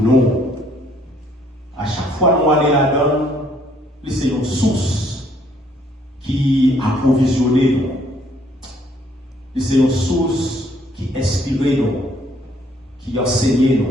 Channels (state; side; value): normal; both; correlation 0.65